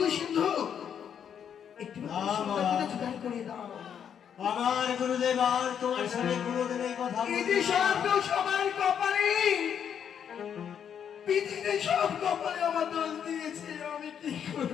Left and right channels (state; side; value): quieter; right; 8.3 dB